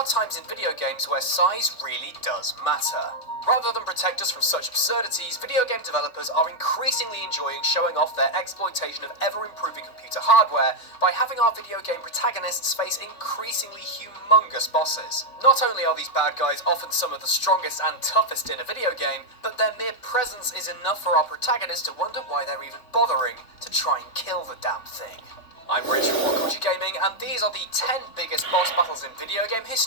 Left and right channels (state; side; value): late; right; 3.5 ms